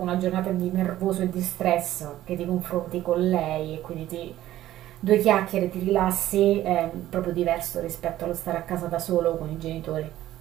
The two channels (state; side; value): quieter; left; 13.9 dB